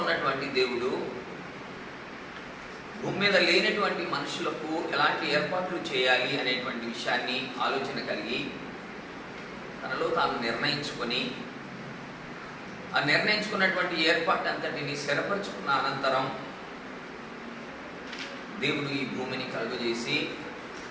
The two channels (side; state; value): both; identical; correlation 1.00